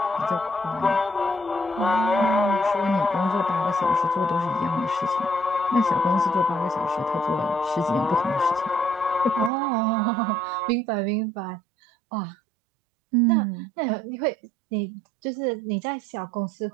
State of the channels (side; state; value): left; drops out; at 9.5 s